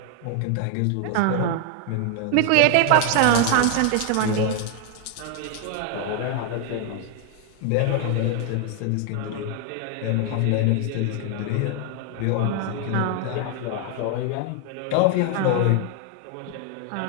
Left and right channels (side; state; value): both; different; correlation 0.00